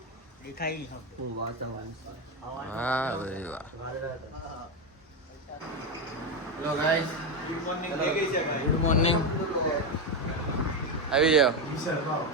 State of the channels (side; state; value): both; normal; correlation 0.10